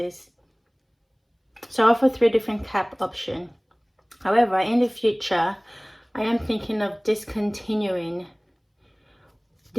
So I offer 3 different cap options. However, in the future, I am thinking of discontinuing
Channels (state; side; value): identical; both; correlation 1.00